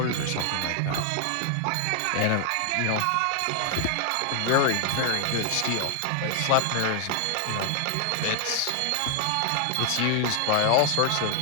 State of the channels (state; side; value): different; both; correlation 0.00